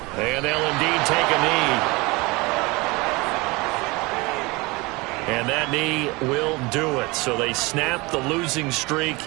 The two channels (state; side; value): quieter; left; 24.3 dB